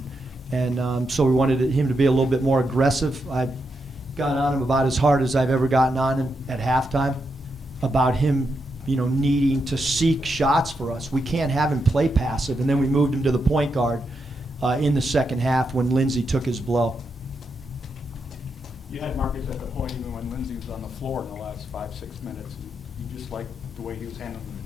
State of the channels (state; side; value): normal; both; correlation 0.83